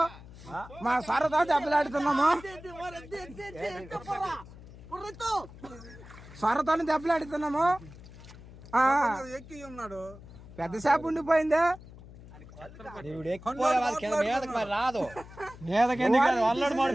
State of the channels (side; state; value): left; noise; hum, 18 dB below the sound